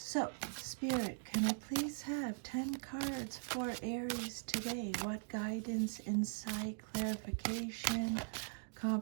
Spirit, can I please have 10 cards for Aries today? What guidance, insight, clarification,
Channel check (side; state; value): left; silent; digital silence